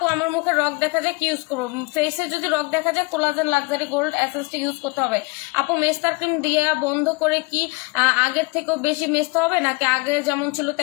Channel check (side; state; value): right; quieter; 27.2 dB